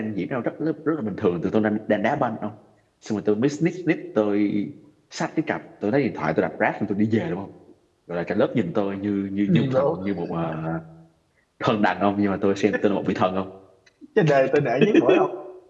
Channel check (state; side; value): identical; both; correlation 1.00